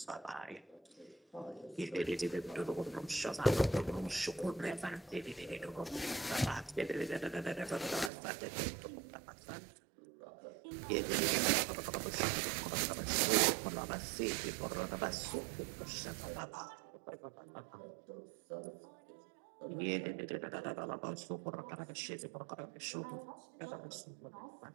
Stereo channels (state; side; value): drops out; left; at 8.1 s